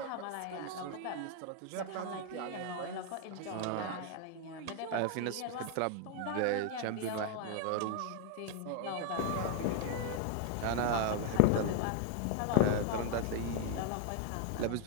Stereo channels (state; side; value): different; both; correlation 0.00